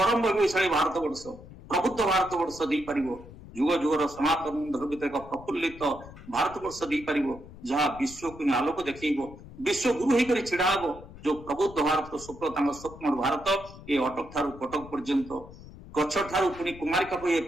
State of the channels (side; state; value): left; noise; rumble, 17 dB below the sound